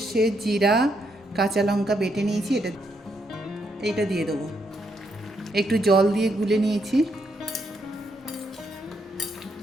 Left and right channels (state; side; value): normal; both; correlation 0.77